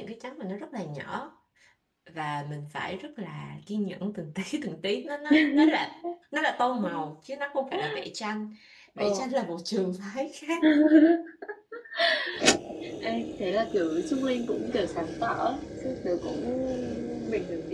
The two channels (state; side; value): identical; both; correlation 1.00